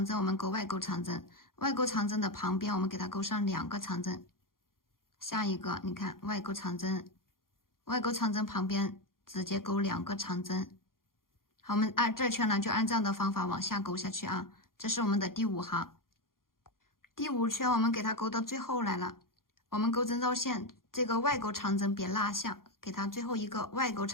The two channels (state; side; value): late; right; 0.91 ms